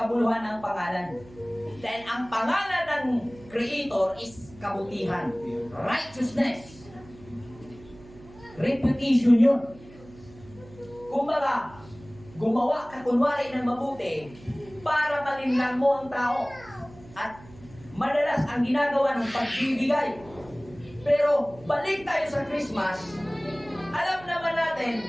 ng pangalan. Dahil ang pangalan ng Creator is kabutihan, righteousness, reputation yun. Kumbaga, gumawa ka kunwari ng mabuti para malinlang mo ang tao. At madalas ang ginagawa ng pagbibigay. Pero balik tayo sa Christmas, alam naman natin,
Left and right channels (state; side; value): noise; right; hum, 21 dB below the sound